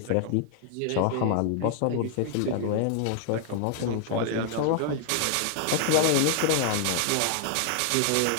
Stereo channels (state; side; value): different; both; correlation 0.00